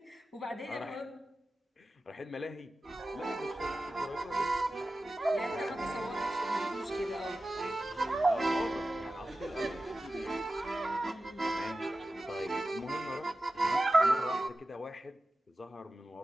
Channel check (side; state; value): both; normal; correlation 0.94